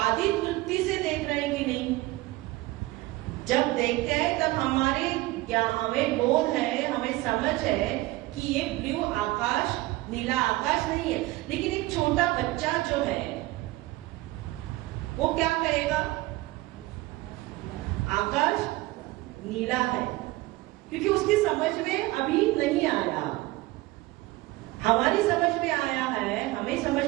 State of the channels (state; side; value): quieter; left; 19.4 dB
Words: वृत्ति से देख रहे हैं कि नहीं? जब देखते हैं तब हमारे क्या हमें बोध है, हमें समझ है कि ये ब्लू आकाश, नीला आकाश नहीं है। लेकिन एक छोटा बच्चा जो है वो क्या कहेगा? आकाश नीला है, क्योंकि उसकी समझ में अभी नहीं आया। हमारी समझ में आया है,